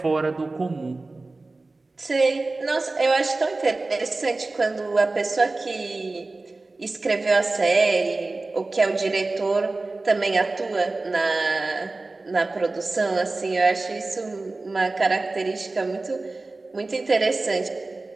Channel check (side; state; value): left; quieter; 3.3 dB